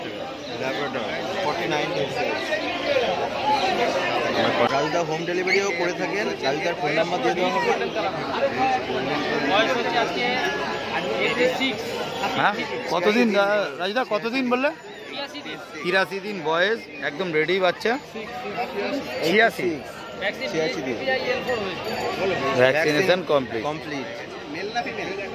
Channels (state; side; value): identical; both; correlation 1.00